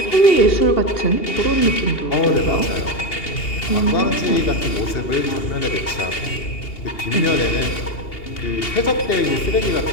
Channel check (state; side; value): late; right; 2.8 ms